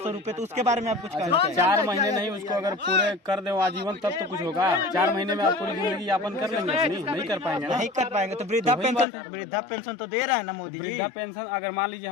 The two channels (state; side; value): drops out; right; at 9.1 s